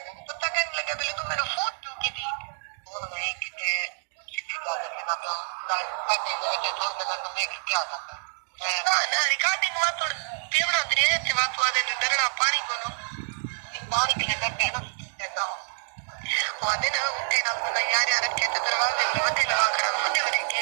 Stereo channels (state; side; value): silent; left; digital silence